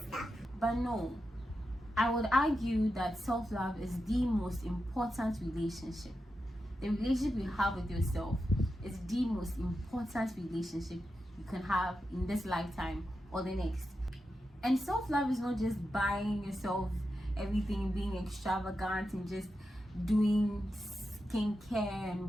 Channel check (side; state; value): both; normal; correlation 0.89